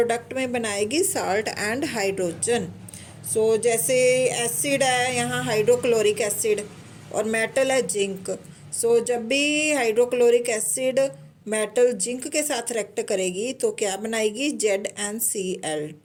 में बनाएगी साल्ट एंड हाइड्रोजन। जैसे एसिड है यहाँ हाइड्रोक्लोरिक एसिड और मेटल है जिंक। जब भी हाइड्रोक्लोरिक एसिड मेटल जिंक के साथ रिएक्ट करेगी तो क्या बनाएगी,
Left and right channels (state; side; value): identical; both; correlation 1.00